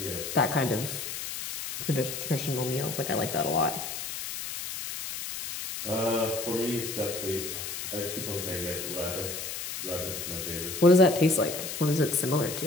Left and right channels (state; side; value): noise; left; hiss, 6 dB below the sound